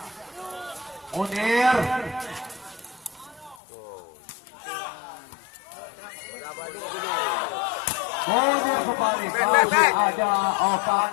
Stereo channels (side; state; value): right; drops out; at 3.6 s